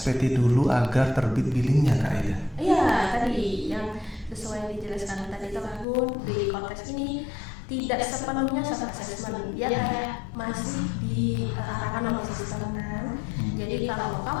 dulu agar terbit billingnya Kak Aida? Iya, tadi yang sesuai dijelaskan tadi Kak Gun, di Cortex ini tidak sepenuhnya self assessment, dia kayak masih diarahkan oleh sistem kan. Jadi kalau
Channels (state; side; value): drops out; right; at 5.9 s